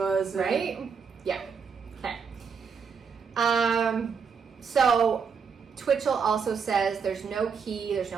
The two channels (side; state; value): left; quieter; 6.1 dB